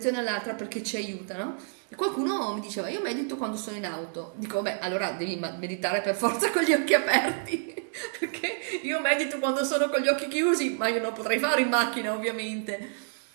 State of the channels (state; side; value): silent; left; digital silence